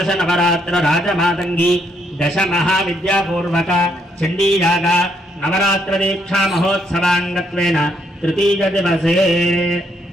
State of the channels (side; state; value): both; normal; correlation 0.73